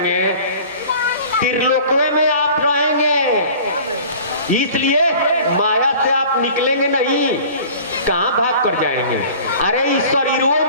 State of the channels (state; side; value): inverted; both; correlation -0.44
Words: त्रिलोकवे में आप रहेंगे। इसलिए माया से आप निकलेंगे नहीं, कहाँ भाग कर जाएंगे? अरे इस शरीरों